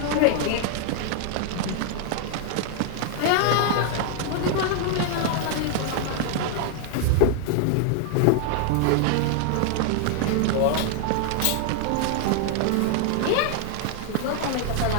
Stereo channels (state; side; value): different; both; correlation 0.00